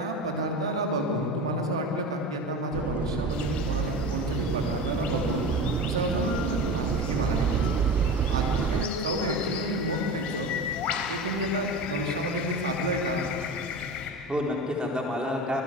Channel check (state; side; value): normal; both; correlation 0.29